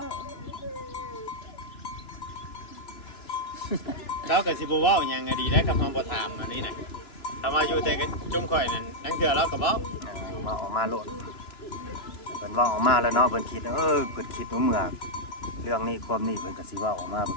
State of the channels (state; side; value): late; right; 2.9 ms